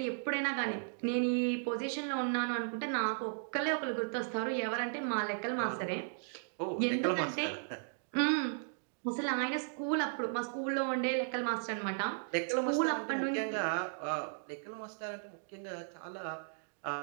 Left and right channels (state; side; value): silent; left; digital silence